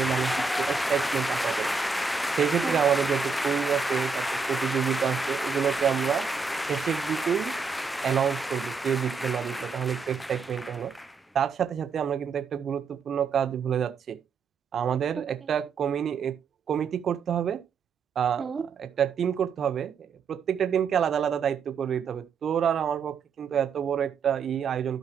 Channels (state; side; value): quieter; left; 5.4 dB